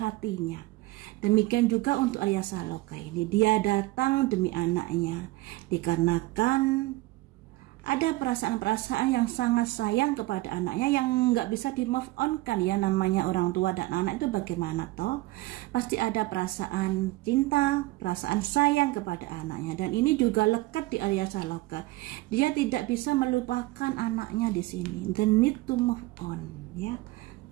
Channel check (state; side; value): quieter; left; 19.7 dB